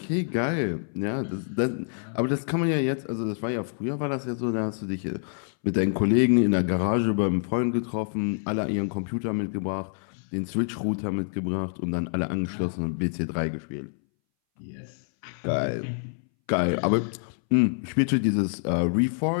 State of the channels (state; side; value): silent; right; 60 dB below the other